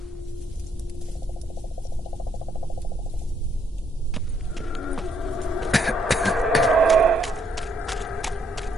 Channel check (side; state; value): both; normal; correlation 0.72